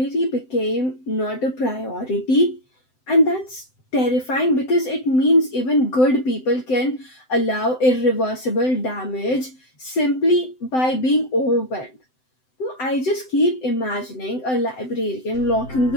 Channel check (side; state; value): right; late; 7.8 ms